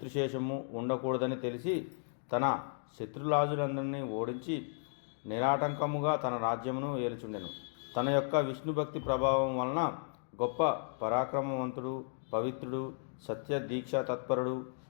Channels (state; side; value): silent; right; digital silence